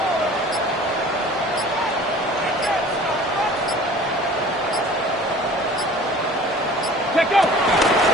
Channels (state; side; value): normal; both; correlation 0.45